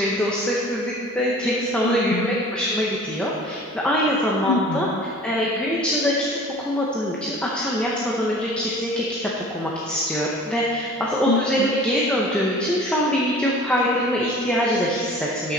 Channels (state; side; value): normal; both; correlation 0.45